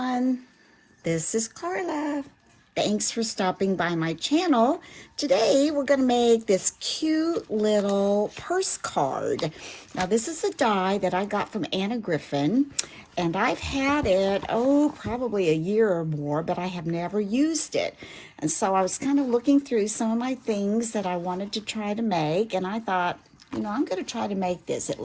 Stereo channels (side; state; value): both; identical; correlation 1.00